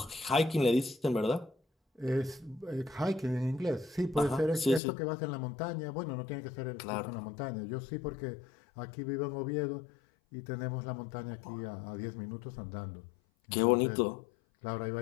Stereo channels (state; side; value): drops out; right; at 4.8 s